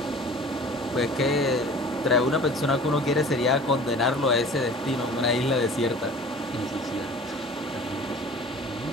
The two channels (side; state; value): both; normal; correlation 0.44